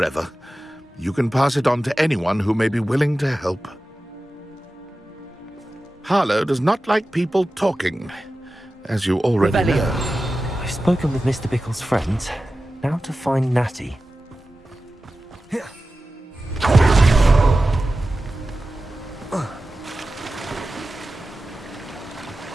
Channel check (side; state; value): both; normal; correlation 0.94